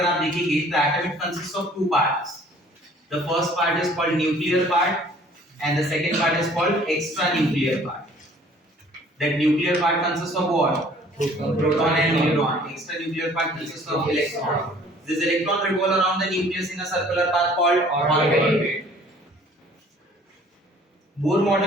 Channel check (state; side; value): normal; both; correlation 0.54